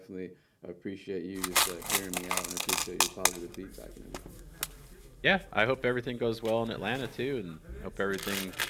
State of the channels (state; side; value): identical; both; correlation 1.00